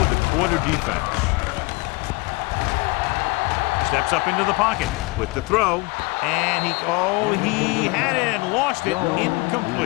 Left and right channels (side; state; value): right; quieter; 25.1 dB